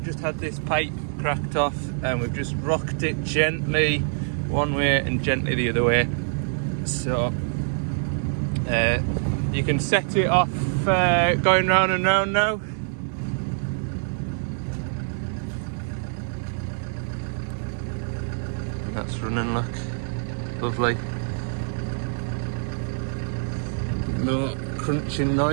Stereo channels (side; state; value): left; silent; digital silence